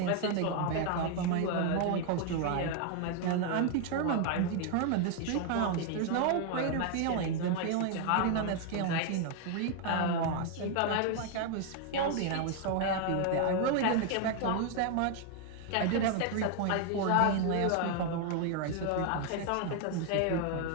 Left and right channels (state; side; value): different; both; correlation 0.00